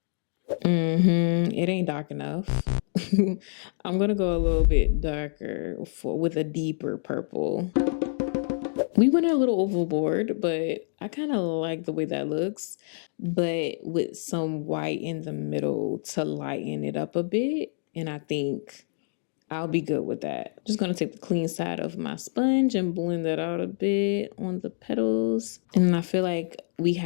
It ain't dark enough. I'm going to go a little bit darker with a deeper purple. We went a little overboard, but I kind of like the way that looks, but with some white in the middle to lighten it up a bit. And I think I'll be good with that. Just going to take the clean side of my sponge and blend that out a bit on the petals. And I feel like we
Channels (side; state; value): right; silent; digital silence